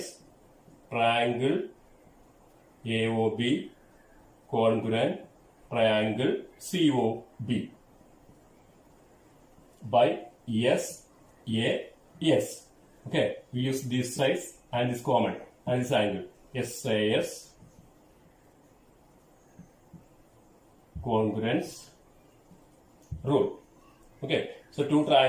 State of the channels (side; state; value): both; identical; correlation 1.00